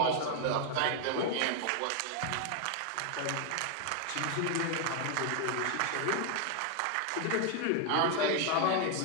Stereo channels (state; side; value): different; both; correlation 0.00